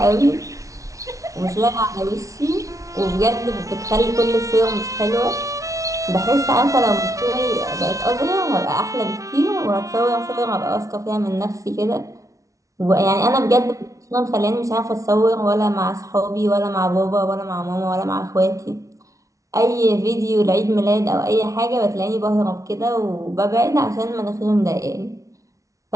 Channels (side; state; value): left; late; 0.16 ms